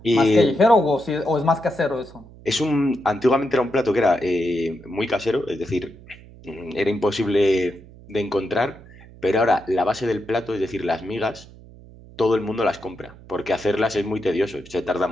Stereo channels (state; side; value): noise; right; hum, 21 dB below the sound